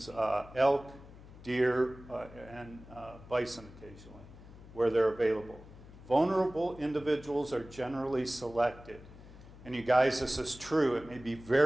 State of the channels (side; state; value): left; noise; hum, 19 dB below the sound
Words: elk, deer, and bison occasionally, where they're available. Vulnerable individuals are generally selected. And you guys, this is true. It may be